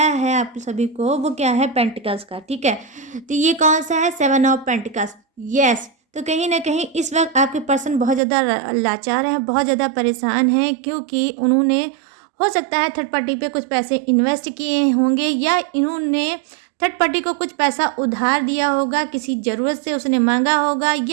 है आप सभी को, वो क्या है, पेंटिकल्स का, ठीक है। तो ये कौन सा है, 7 ऑफ पेंटिकल्स, यस। तो कहीं ना कहीं इस वक्त आपके पर्सन बहुत ज़्यादा लाचार हैं, बहुत ज़्यादा परेशान हैं, क्योंकि उन्होंने हो सकता है थर्ड पार्टी पे कुछ पैसे इन्वेस्ट किए होंगे, या इन्होंने थर्ड पार्टी को कुछ पैसा उधार दिया होगा, किसी ज़रूरत से उसने मांगा होगा,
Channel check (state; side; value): drops out; left; at 8.2 s